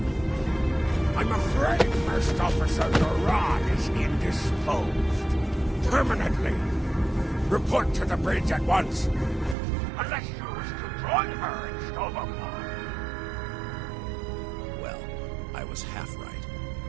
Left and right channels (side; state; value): left; drops out; at 9.6 s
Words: I'm afraid First Officer Duran is indisposed. Permanently. Report to the bridge at once. Unless you wish to join her in Stovapar. Well, I was half right.